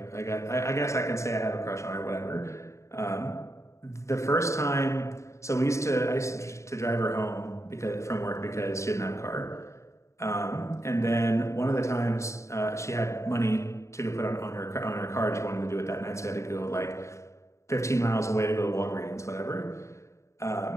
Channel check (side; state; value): right; late; 0.14 ms